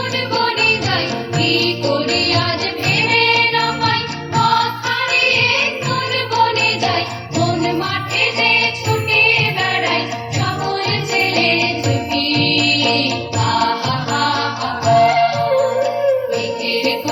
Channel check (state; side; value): identical; both; correlation 1.00